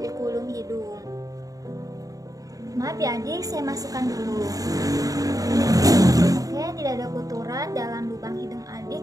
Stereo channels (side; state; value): left; late; 0.17 ms